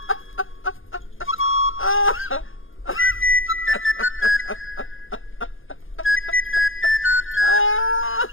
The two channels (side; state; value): right; late; 0.58 ms